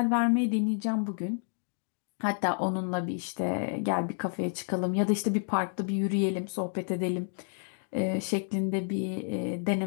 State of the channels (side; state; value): right; silent; 58 dB below the other